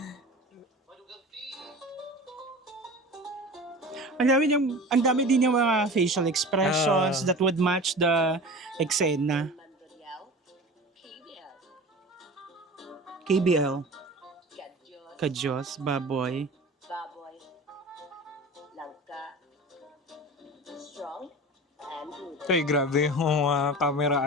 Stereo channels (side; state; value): both; normal; correlation 0.36